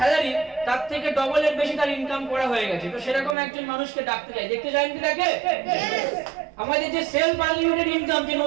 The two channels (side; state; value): left; drops out; at 3.4 s